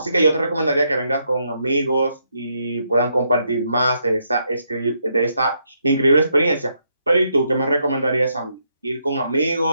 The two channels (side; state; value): both; inverted; correlation -0.77